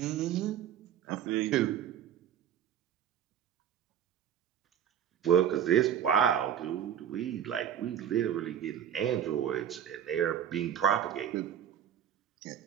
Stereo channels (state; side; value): quieter; left; 9.5 dB